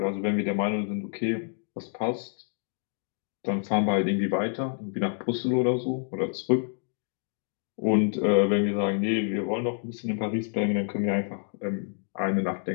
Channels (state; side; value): silent; right; 59 dB below the other